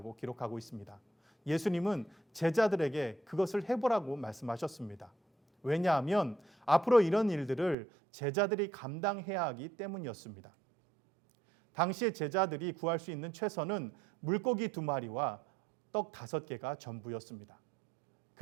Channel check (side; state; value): left; drops out; at 7.8 s